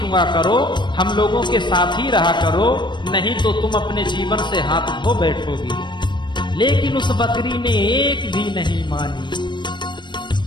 करो, हम लोगों के साथ ही रहा करो, नहीं तो तुम अपने जीवन से हाथ धो बैठोगी। लेकिन उस बकरी ने एक भी नहीं मानी।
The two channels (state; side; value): late; right; 0.22 ms